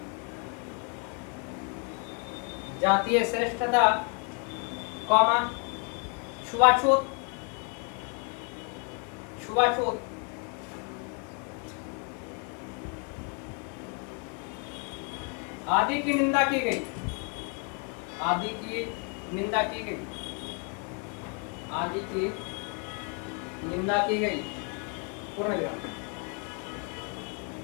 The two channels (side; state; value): right; quieter; 37.5 dB